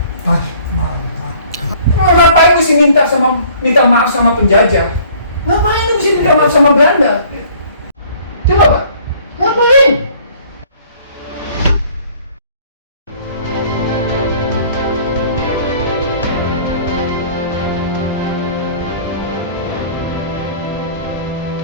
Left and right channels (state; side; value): inverted; both; correlation -0.54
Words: basmalah. Terus ngapain mesti minta maaf sama penjajah? Ngapain lu mesti minta maaf sama Belanda? Coba Pak, ngapain?